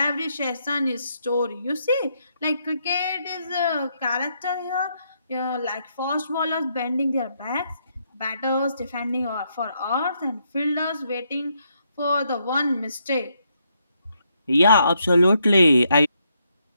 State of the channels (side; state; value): both; inverted; correlation -0.76